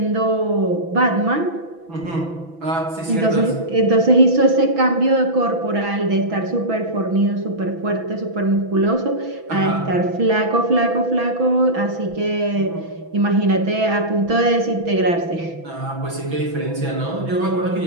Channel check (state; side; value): late; left; 6.0 ms